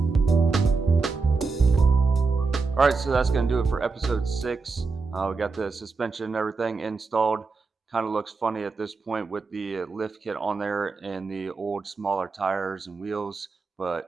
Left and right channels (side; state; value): left; quieter; 4.4 dB